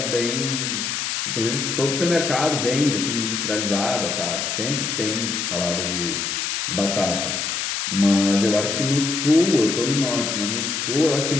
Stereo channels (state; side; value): noise; left; hiss, 2 dB below the sound